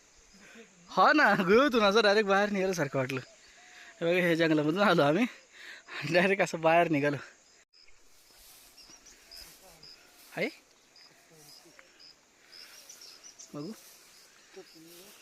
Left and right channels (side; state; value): both; identical; correlation 1.00